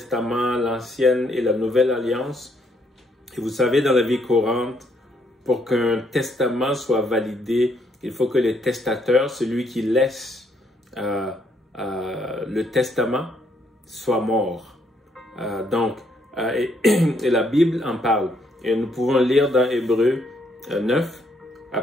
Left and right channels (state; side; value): normal; both; correlation 0.71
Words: l'Ancienne et la Nouvelle Alliance. Et vous savez, dans la vie courante, pour qu'un testament soit validé, il faut que le testateur, celui qui laisse le testament, soit mort. Et la Bible en parle. Et nous pouvons lire dans Hébreux 9, à